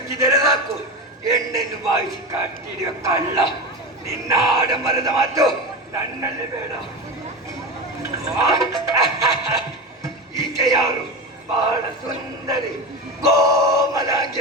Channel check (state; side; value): normal; both; correlation 0.23